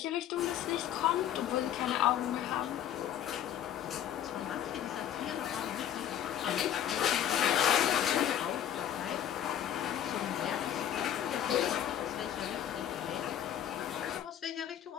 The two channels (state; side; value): quieter; right; 10.5 dB